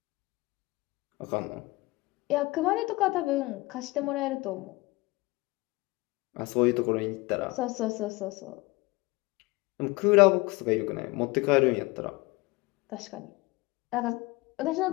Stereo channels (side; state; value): right; quieter; 22.6 dB